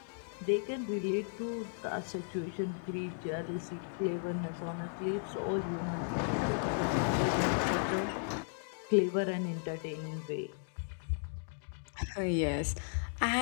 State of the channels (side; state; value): right; silent; digital silence